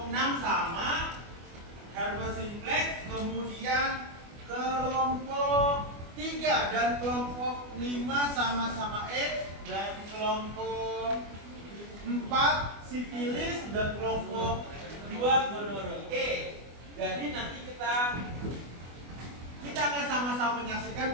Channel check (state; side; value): late; left; 24 ms